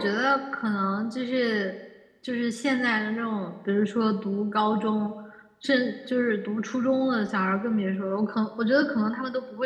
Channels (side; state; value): both; identical; correlation 1.00